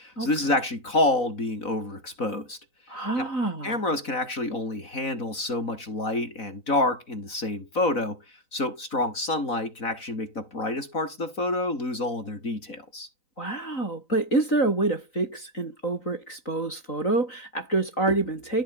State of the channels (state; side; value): late; right; 4.0 ms